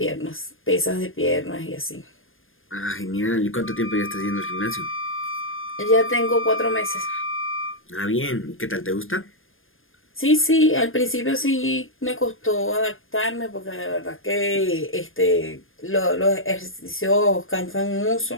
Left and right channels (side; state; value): right; late; 0.59 ms